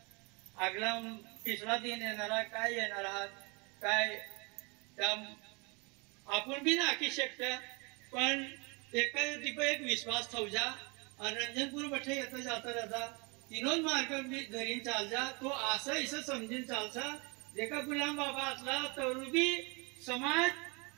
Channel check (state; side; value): quieter; left; 29.9 dB